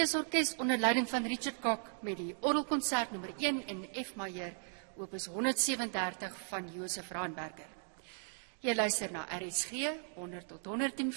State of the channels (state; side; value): silent; left; 53 dB below the other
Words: onder leiding van Richard Kok met die orgelkonsert nommer 1 in F majeur, opus 137 van Josef Raanberger. Jy luister na RSG 100 tot